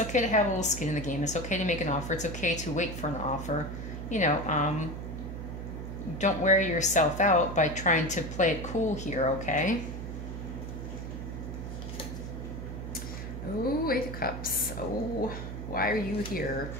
to have a little skin in the game. It's okay to make an offer. It's okay to wait for an offer. You know, don't wear yourself out by trying to play it cool here, okay? Oh, Eight of Cups. Oh, why are you here?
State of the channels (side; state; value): right; noise; hum, 7 dB below the sound